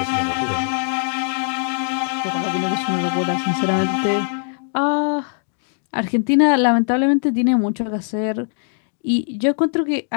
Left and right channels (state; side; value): silent; right; digital silence